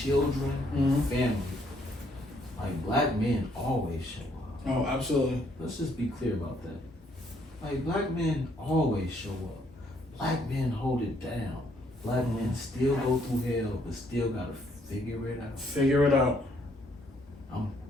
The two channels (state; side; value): normal; both; correlation 0.69